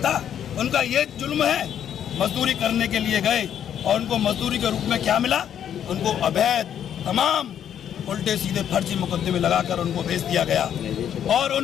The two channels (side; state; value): right; quieter; 9.5 dB